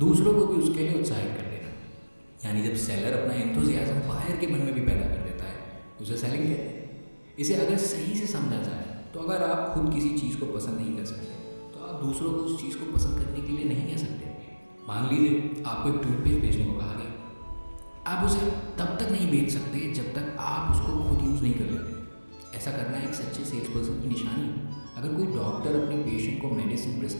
को भी उसके लिए उत्साहित कर देना। यानी जब सेलर अपना एंथुजियाज्म बाहर के मन में भी पैदा कर देता है, उसे सेलिंग कहते हैं। इसे अगर सही से समझा जाए तो अगर आप खुद किसी चीज़ को पसंद नहीं कर सकते तो आप दूसरों को उस चीज़ को पसंद करने के लिए नहीं कह सकते। मान लीजिए आपको एक टूथपेस्ट बेचने को कहा गया, आप उसे तब तक नहीं बेच सकते जब तक आप उसको खुद यूज़ नहीं कर लेते। ऐसा करना एक सच्चे सेल्स पर्सन की निशानी है। अगर कोई डॉक्टर अपने पेशेंट को मेडिसिन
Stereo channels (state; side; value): inverted; both; correlation -1.00